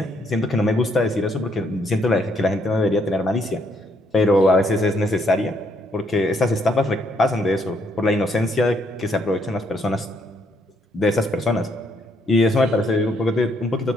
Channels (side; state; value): both; normal; correlation 0.71